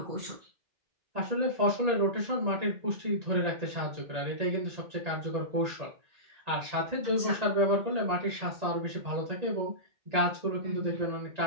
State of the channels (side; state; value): left; late; 1.9 ms